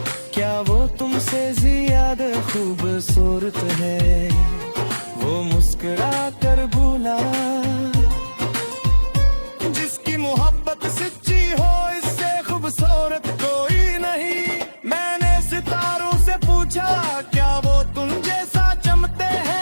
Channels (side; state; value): both; inverted; correlation -1.00